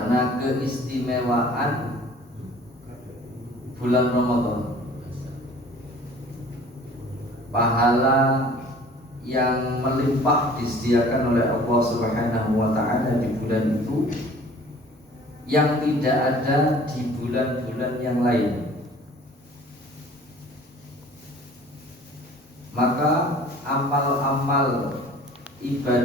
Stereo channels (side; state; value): both; normal; correlation 0.49